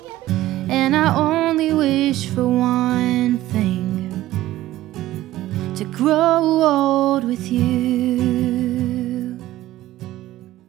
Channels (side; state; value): left; quieter; 15.2 dB